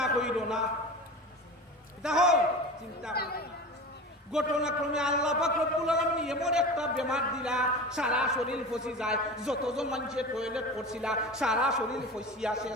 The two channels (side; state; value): both; normal; correlation 0.32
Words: কইল না দেখো চিন্তা ঘটনাক্রমে আল্লাহ পাক রব্বুল আলামিন এমন একটা বেমার দিলা সারা শরীর ফসি যায় যতজন মানুষের টয়লেট করছিলা সারা শরীর ফসিয়া